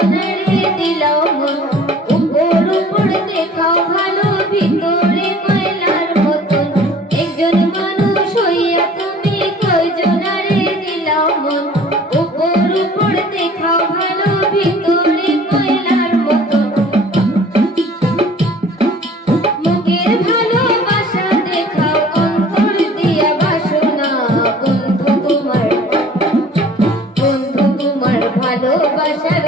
দিলাও মন, উপর উপর দেখাও ভালো, ভিতরে কয়লার মতন। একজন মানুষ হইয়া তুমি কয়জনের দিলাও মন, উপর উপর দেখাও ভালো, ভিতরে কয়লার মতন। মুখের ভালোবাসা দেখাও, অন্তর দিয়া বাসনা, বন্ধু তোমার ভালোবাসার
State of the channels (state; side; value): normal; both; correlation 0.49